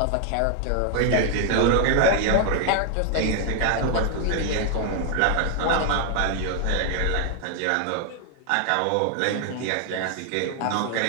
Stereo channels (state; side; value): different; both; correlation 0.00